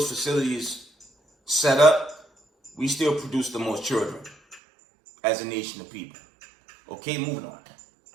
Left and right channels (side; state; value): left; drops out; at 4.6 s